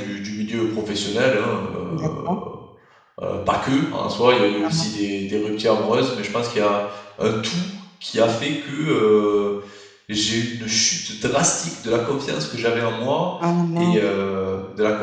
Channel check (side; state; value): both; identical; correlation 1.00